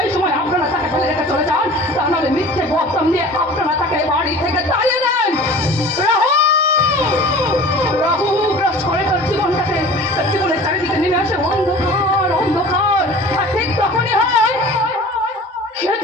সময় আপনারা তাকে ফেলে রেখে চলে যান, তা নাহলে মিথ্যে বদনাম দিয়ে আপনারা তাকে বাড়ি থেকে তাড়িয়ে দেন। রাহু গ্রাস করে তার জীবনটাকে, তার জীবনের চারিদিকে নেমে আসে অন্ধকার। আর ঠিক তখনই হয়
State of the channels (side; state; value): both; normal; correlation 0.42